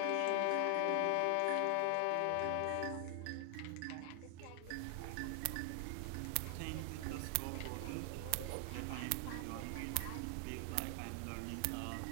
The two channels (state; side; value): different; both; correlation 0.00